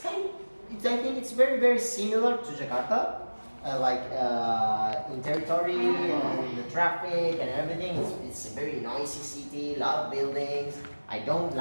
it's very, very similar to Jakarta. In territory and the traffic and everything, it's a very noisy city, a lot of buildings. I don't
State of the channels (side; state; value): both; inverted; correlation -1.00